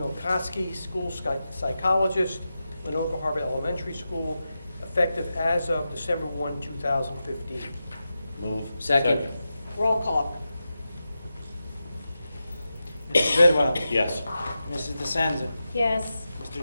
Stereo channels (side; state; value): both; inverted; correlation -0.91